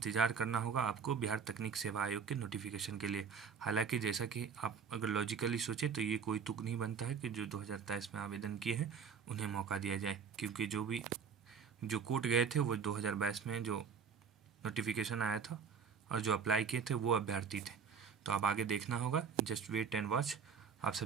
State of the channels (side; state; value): left; quieter; 6.4 dB